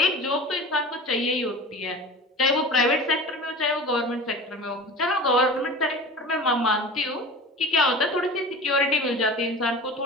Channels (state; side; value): normal; both; correlation 0.35